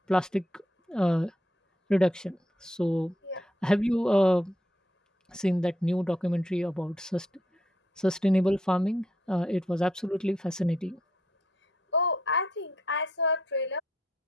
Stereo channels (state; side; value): normal; both; correlation 0.76